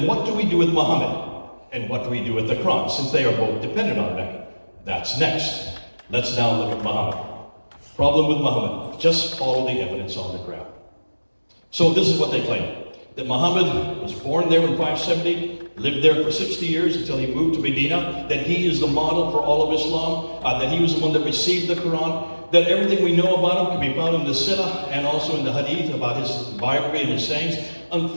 what do we do with Muhammad? And what do we do with the Quran, since they are both dependent on Mecca? That's next. Let's now look at Muhammad. Problem with Muhammad, just follow the evidence on the ground. So this is what they claim. That Muhammad was born there in 570, lived there for 60 years until he moved to Medina, that he is the model for all of Islam, that he was the one that received the Quran, that everything we know about him can be found in the Sirah and also in the Hadith about his biography and his sayings.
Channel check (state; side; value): inverted; both; correlation -1.00